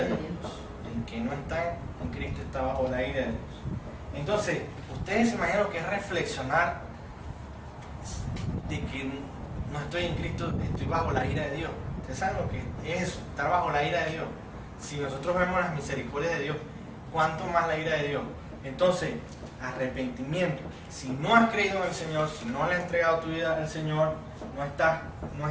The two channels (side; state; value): both; identical; correlation 1.00